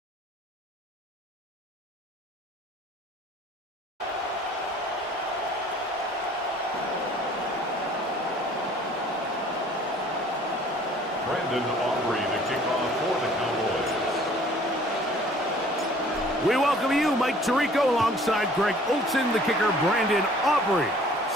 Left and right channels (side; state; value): both; normal; correlation 0.53